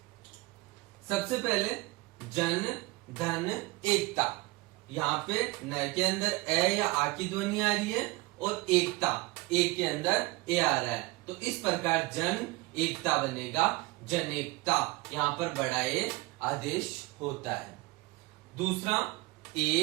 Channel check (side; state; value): left; quieter; 22.0 dB